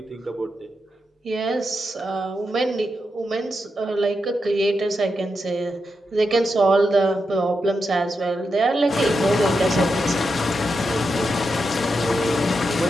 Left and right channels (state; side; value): normal; both; correlation 0.86